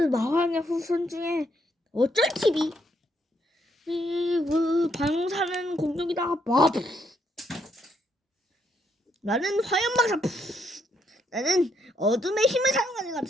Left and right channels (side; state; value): both; normal; correlation 0.75